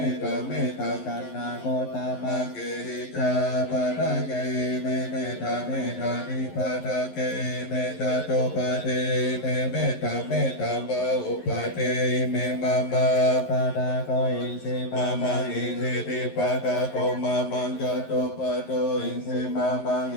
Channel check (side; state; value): right; late; 11 ms